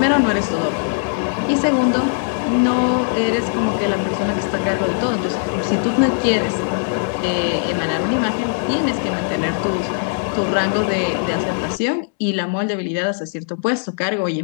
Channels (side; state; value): right; silent; 63 dB below the other